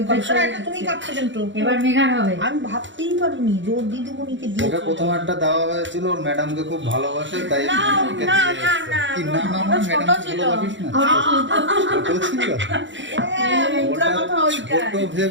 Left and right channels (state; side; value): late; left; 0.54 ms